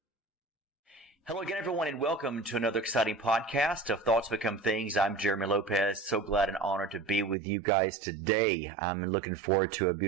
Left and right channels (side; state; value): left; drops out; at 7.4 s